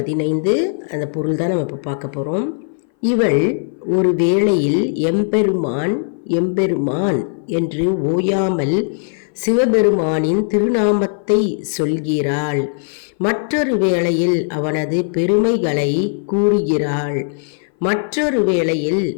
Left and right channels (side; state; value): right; silent; 60 dB below the other